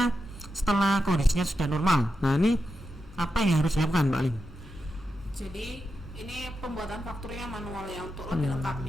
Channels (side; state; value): both; normal; correlation 0.88